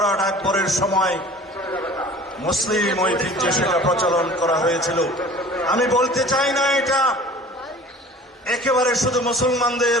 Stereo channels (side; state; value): both; normal; correlation 0.44